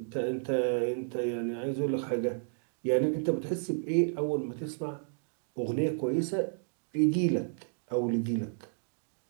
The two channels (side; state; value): left; silent; digital silence